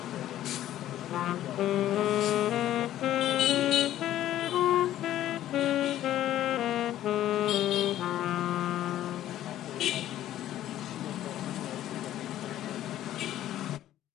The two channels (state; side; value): quieter; right; 12.8 dB